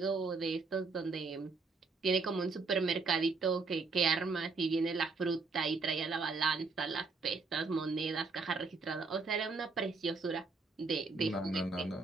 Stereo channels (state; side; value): quieter; left; 4.2 dB